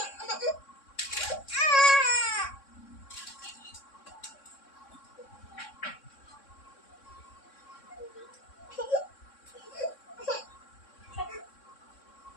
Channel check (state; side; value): late; right; 3.6 ms